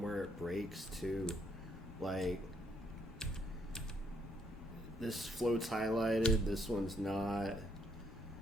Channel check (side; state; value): both; normal; correlation 0.72